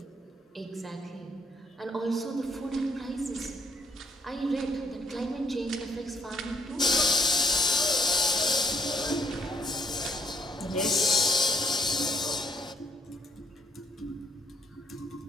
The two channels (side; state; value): both; normal; correlation 0.68